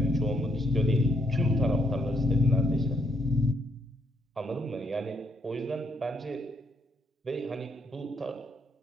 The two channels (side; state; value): both; normal; correlation 0.74